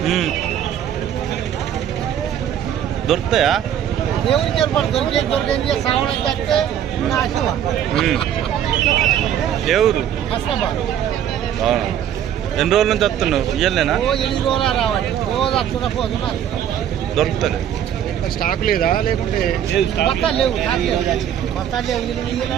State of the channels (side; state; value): left; quieter; 10.0 dB